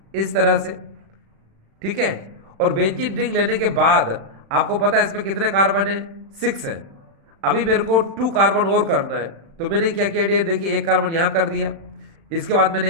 इस तरह से, ठीक है। और बेंजीन रिंग लेने के बाद आपको पता है इसमें कितने कार्बन है, 6 है। अभी मेरे को 2 कार्बन और करना है, तो मैंने क्या किया डियर, देखिए 1 कार्बन यहां कर दिया, इसके बाद मैंने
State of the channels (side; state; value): left; late; 36 ms